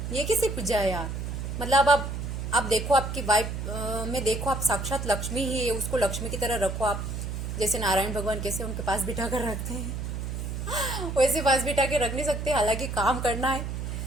ये कैसे पूजा है यार। मतलब आप देखो आपकी वाइफ में देखो आप साक्षात लक्ष्मी ही है, उसको लक्ष्मी की तरह रखो आप। जैसे नारायण भगवान कैसे उनके पास बिठा कर रखते हैं वैसे पास बिठा के रख नहीं सकते, हालांकि काम करना है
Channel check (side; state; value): right; noise; hum, 4 dB below the sound